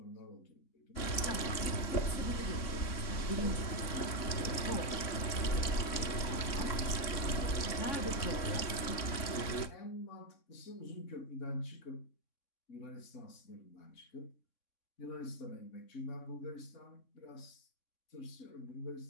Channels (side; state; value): right; late; 3.6 ms